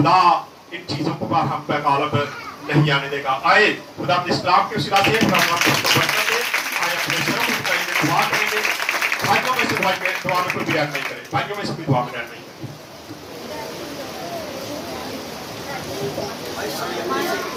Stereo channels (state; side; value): identical; both; correlation 1.00